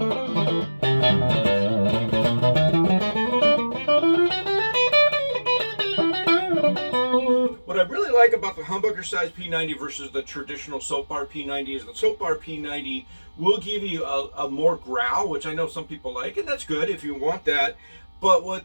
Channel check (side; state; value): both; inverted; correlation -1.00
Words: What I really like about the humbucker size P90 versus the traditional soap bar P90 is the soap bar P90 will give you a more growl, which I know some people like, and that's good if you want that. But